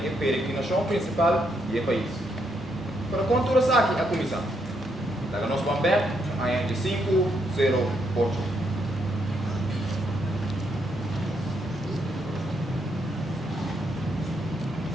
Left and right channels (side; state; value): both; normal; correlation 0.77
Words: peregrinação principal do país. Para conturas aqui a comissão. Daga nós vamos ver, a de 508.